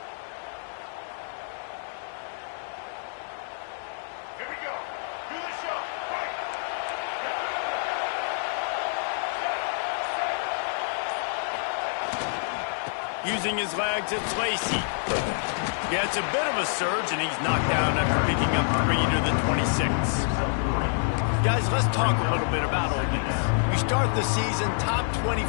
Using his legs, it's Lacey. Yeah, it's a bit of a surge, and he's knocked down after picking up 3 to the 26. Guys, let's talk a little bit about Ole Miss. You start the season top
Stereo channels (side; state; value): right; silent; digital silence